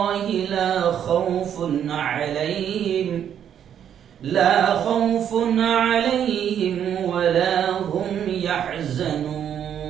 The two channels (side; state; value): left; quieter; 9.2 dB